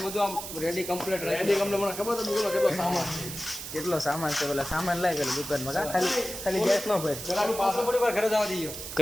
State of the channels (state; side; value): noise; right; hiss, 8 dB below the sound